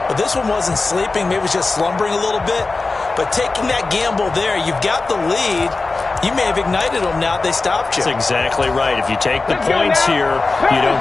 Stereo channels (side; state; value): right; quieter; 3.7 dB